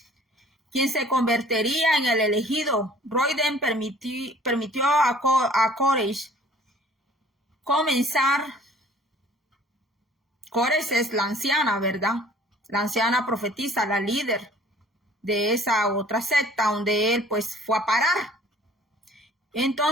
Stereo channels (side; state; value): both; normal; correlation 0.52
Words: Quien se convertiría en el elegido. Royden permitió a Koresh comenzar. Koresh es la anciana, ¿verdad? La anciana profetisa, la líder. de esa otra secta donde él pues fue a parar.